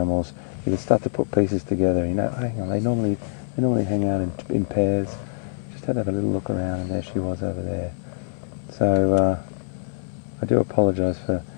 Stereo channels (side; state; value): right; silent; 59 dB below the other